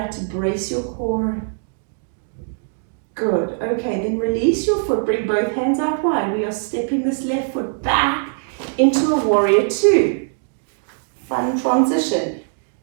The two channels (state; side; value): silent; left; digital silence